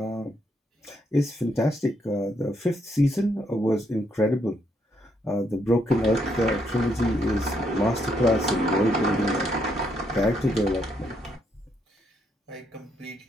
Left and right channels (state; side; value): normal; both; correlation 0.75